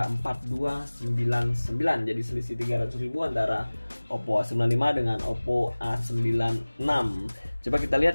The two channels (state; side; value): inverted; both; correlation -1.00